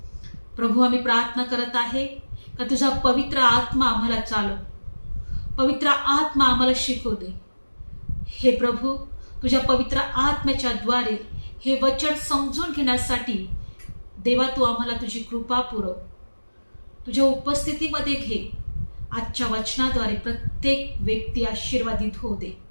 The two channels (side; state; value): both; inverted; correlation -1.00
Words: प्रभू, आम्ही प्रार्थना करत आहे का तुझा पवित्र आत्मा आम्हाला चालव, पवित्र आत्मा आम्हाला शिकवू दे. हे प्रभू, तुझ्या पवित्र आत्म्याच्या द्वारे हे वचन समजून घेण्यासाठी देवा तू आम्हाला तुझी कृपा पुरव. तुझ्या उपस्थितीमध्ये घे. आजच्या वचनाद्वारे प्रत्येक व्यक्ती आशीर्वादित होऊ दे.